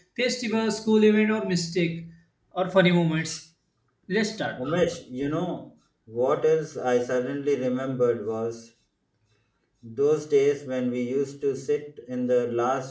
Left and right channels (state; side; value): identical; both; correlation 1.00